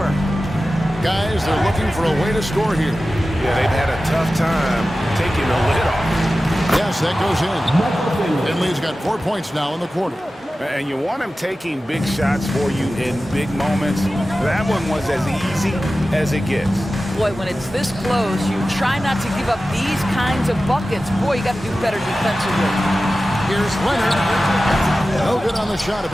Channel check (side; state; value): both; normal; correlation 0.95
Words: Guys, they're looking for a way to score here. Yeah, they've had a tough time taking the lid off. Yes, that goes in. Finley's got 4 points now in the quarter. And you want him taking big shots for you in big moments. That one was as easy as it gets. Boy, when it's this close, you try not to give up these kinds of buckets. Boy, you got to do better defensively. Here's Leonard. No good on the shot. A